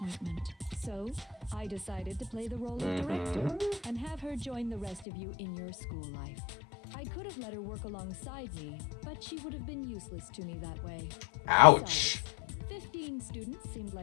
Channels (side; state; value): right; drops out; at 5.1 s